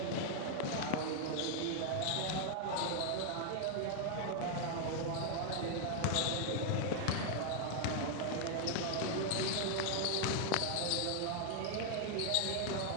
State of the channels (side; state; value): both; different; correlation 0.00